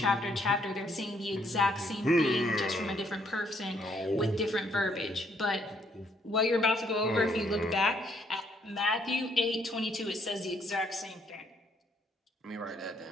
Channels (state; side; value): normal; both; correlation 0.69